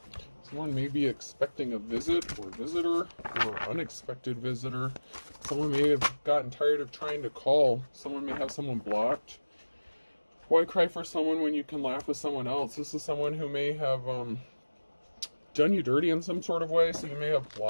Someone may be expecting a visit or visitor or unexpected visitor. Someone may have gotten tired of trying to call. Someone may have someone blocked. Why cry for someone when you can laugh with someone else? This is someone who may have done you dirty in some sort of way, so you may have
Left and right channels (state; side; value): inverted; both; correlation -1.00